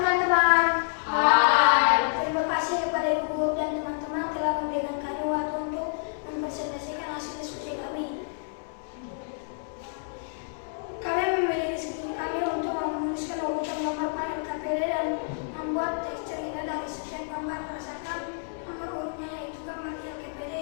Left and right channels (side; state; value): right; silent; digital silence